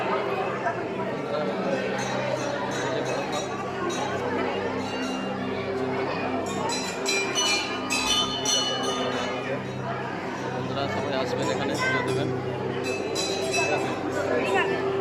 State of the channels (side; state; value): both; identical; correlation 1.00